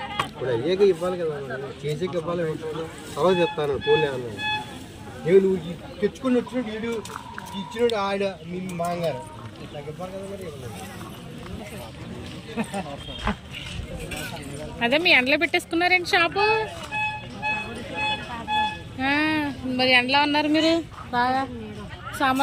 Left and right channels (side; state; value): both; identical; correlation 1.00